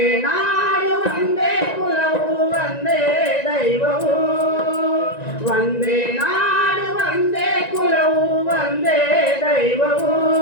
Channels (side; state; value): right; late; 1.9 ms